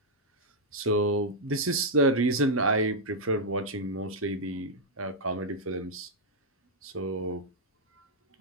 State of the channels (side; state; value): both; normal; correlation -0.04